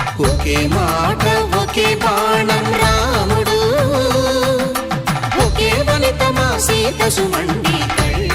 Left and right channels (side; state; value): both; identical; correlation 1.00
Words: ఒకే మాట ఒకే బాణం రాముడు ఒకే వనిత మా సీత సుమండి